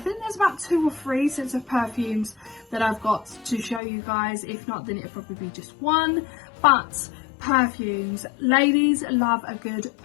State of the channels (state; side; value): drops out; right; at 3.8 s